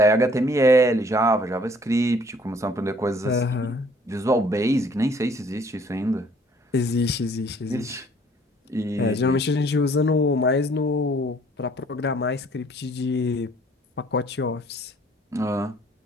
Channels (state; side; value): normal; both; correlation 0.58